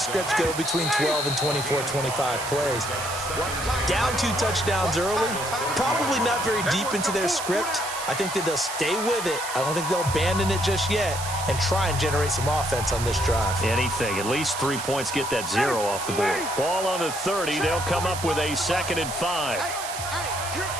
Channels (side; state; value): right; noise; hiss, 8 dB below the sound